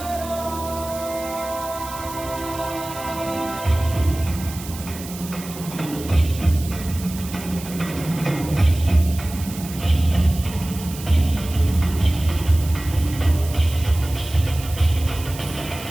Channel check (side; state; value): right; noise; hiss, 13 dB below the sound